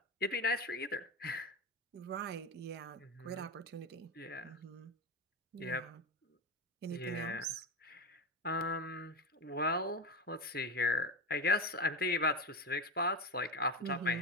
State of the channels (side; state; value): both; normal; correlation 0.18